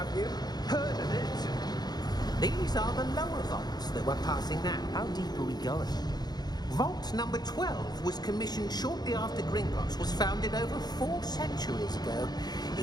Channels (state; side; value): late; right; 0.20 ms